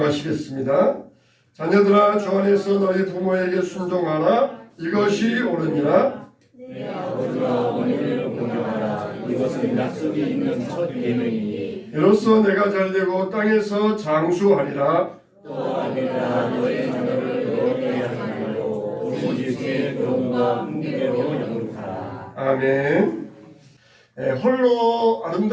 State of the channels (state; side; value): identical; both; correlation 1.00